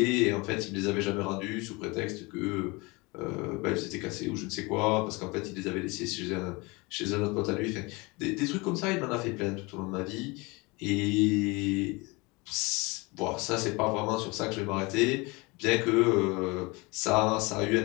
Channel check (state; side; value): quieter; right; 25.8 dB